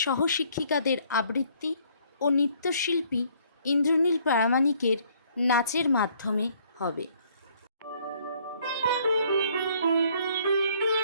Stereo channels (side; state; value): both; inverted; correlation -0.63